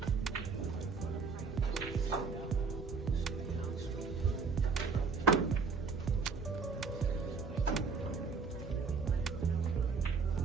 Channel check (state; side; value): quieter; left; 4.9 dB